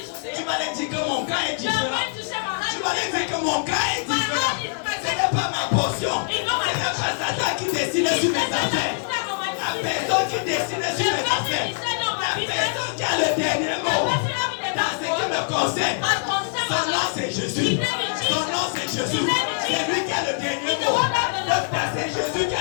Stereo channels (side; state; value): right; silent; digital silence